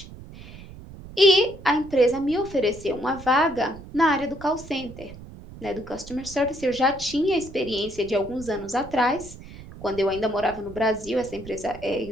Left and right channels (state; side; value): noise; right; rumble, 16 dB below the sound